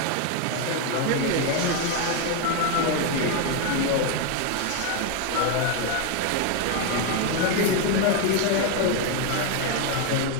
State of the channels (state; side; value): different; both; correlation 0.01